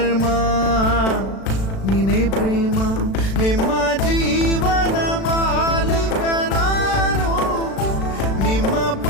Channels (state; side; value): late; right; 36 ms